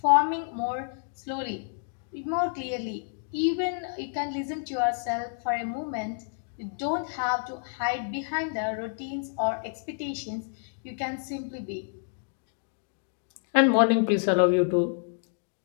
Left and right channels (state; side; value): silent; right; digital silence